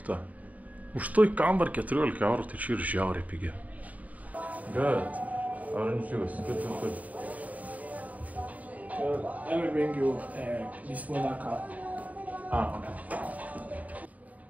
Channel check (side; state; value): left; late; 0.072 ms